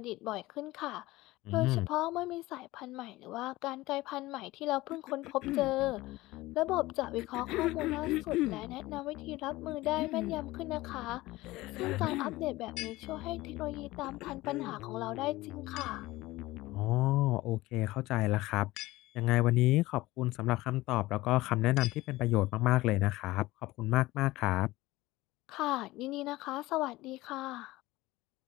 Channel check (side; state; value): right; quieter; 18.7 dB